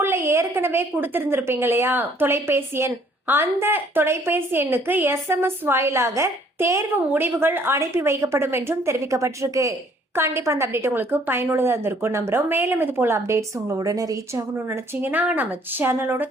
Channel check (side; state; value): both; normal; correlation 0.61